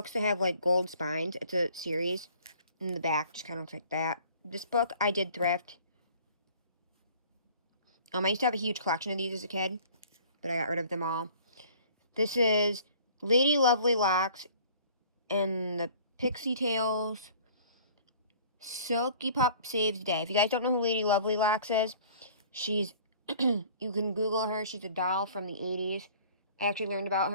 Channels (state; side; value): inverted; both; correlation -0.51